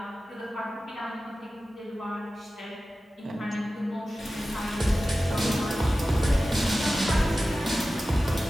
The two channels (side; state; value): both; normal; correlation 0.95